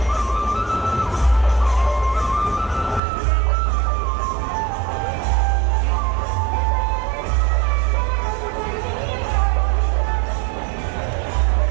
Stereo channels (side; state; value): left; drops out; at 3.0 s